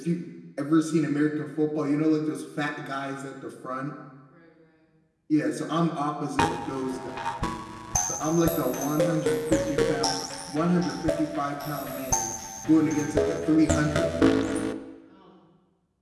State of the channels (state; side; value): identical; both; correlation 1.00